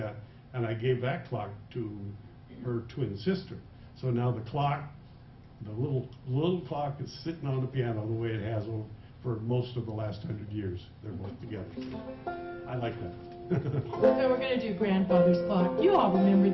and I gave that clock to her twin sister. So now the clock, the little clock is sitting on the piano the way it has for most of the last 100 years. They're both together. I like that. So we're going to do grandfather's clock. You all remember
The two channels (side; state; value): both; identical; correlation 1.00